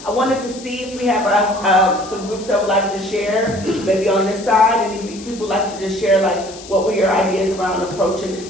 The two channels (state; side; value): noise; left; hiss, 17 dB below the sound